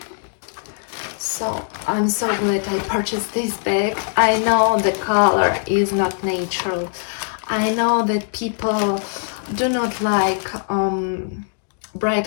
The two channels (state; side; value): silent; right; 65 dB below the other